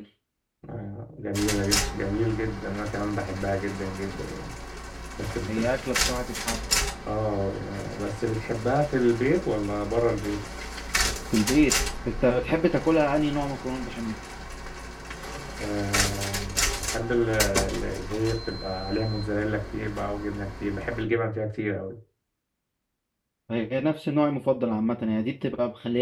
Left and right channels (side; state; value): both; identical; correlation 1.00